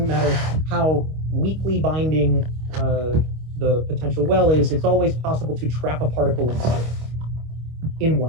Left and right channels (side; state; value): left; late; 25 ms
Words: matter how weakly binding the potential well is, it's always possible to trap a particle inside in